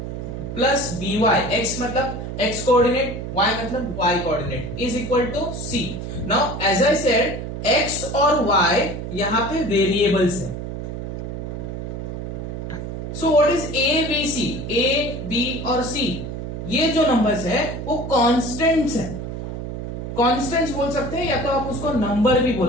प्लस by, x मतलब x कोऑर्डिनेट, y मतलब y coordinate is equal to c। Now as I said, x और y यहाँ पे वेरिएबल्स है। So what is A B C, A B और C, ये जो नंबर्स है वो कांस्टेंट्स हैं। कांस्टेंट्स बोल सकते हैं या तो आप उसको नंबर भी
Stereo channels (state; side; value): noise; right; hum, 6 dB below the sound